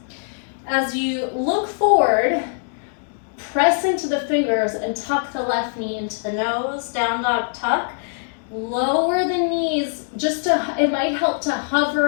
As you look forward, press into the fingers and tuck the left knee into the nose, down dog tuck. Lower the knees, it might help to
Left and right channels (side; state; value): right; silent; digital silence